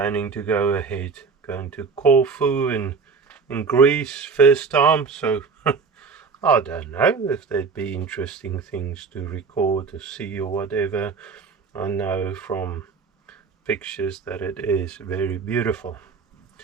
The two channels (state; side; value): quieter; left; 5.1 dB